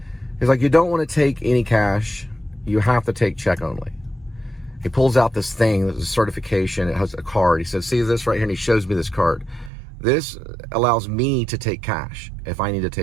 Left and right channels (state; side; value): drops out; left; at 9.7 s